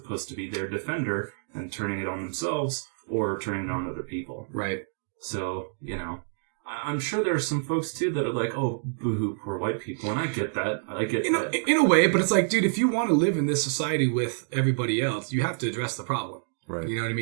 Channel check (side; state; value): left; silent; digital silence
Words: to be their defender and turning it on themselves or turning it on other people. Right. So I'm sure there are some folks too that are like, oh, boo-hoo, poor white people, and I get that. In a way, but it's like, dude, if you want to live in this society with everybody else, you have to address the problem. Right. You know what I